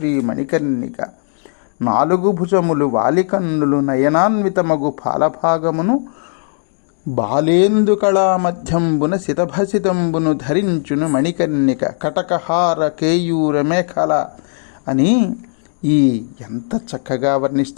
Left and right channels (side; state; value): right; silent; 61 dB below the other